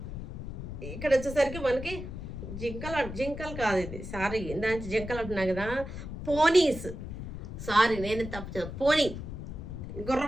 ఇక్కడ వచ్చేసరికి మనకి జింకలు కాదు ఇది, సారీ ఇందాక జింకలు అంటున్నా కదా, పోనీస్. సారీ నేను తప్పు, పోనీ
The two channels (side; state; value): left; noise; rumble, 8 dB below the sound